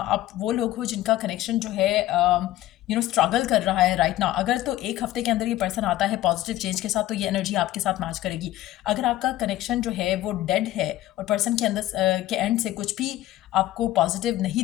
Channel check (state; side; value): quieter; right; 14.9 dB